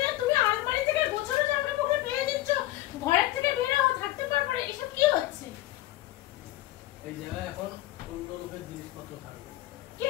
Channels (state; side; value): quieter; right; 16.0 dB